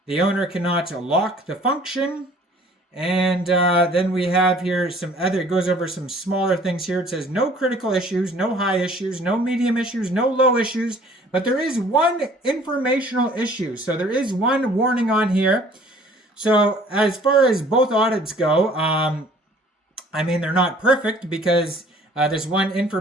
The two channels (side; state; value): both; normal; correlation 0.53